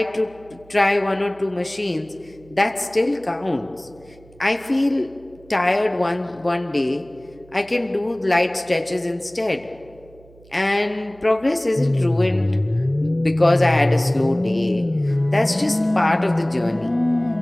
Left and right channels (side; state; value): right; noise; hum, 26 dB below the sound